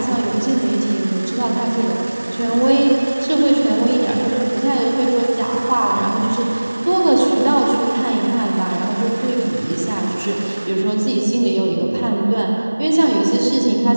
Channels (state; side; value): inverted; both; correlation -1.00